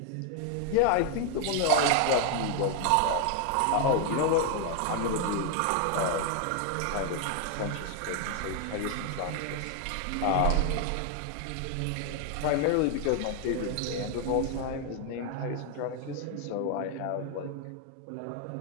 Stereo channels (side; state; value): both; different; correlation 0.00